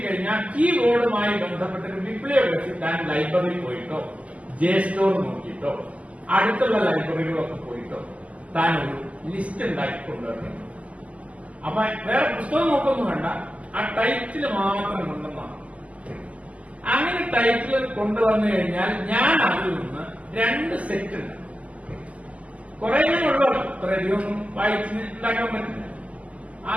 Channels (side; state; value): left; late; 0.068 ms